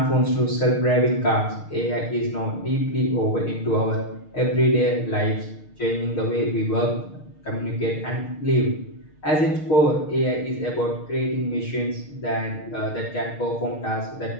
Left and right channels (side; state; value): right; late; 6.5 ms